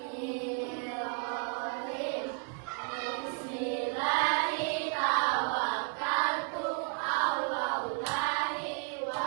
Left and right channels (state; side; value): quieter; left; 38.7 dB